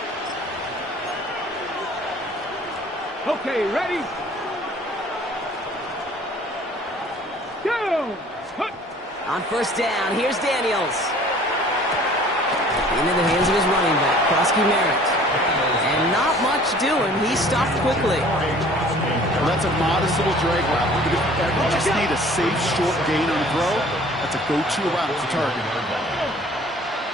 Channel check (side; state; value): both; normal; correlation 0.51